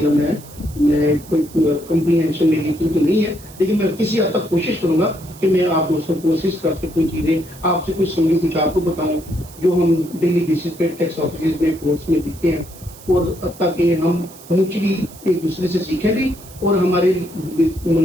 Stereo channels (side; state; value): right; noise; hiss, 20 dB below the sound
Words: ہے، میں کوئی کمپریہنشن میری تو نہیں ہے، لیکن میں کسی حد تک کوشش کروں گا کہ میں آپ دوستوں کو اسسٹ کر سکوں، چیزیں آپ سے کچھ سمجھوں، کچھ آپ کو بتاؤں جو ہم ڈیلی بیسس پہ ٹیکس آفیسز میں کورس میں دیکھتے ہیں، اور تاکہ ہم میوچلی ایک دوسرے سے سیکھیں بھی اور ہمارے